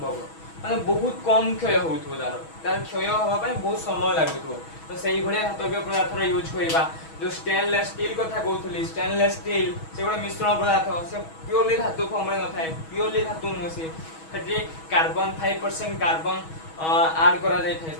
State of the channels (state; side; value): late; right; 6.2 ms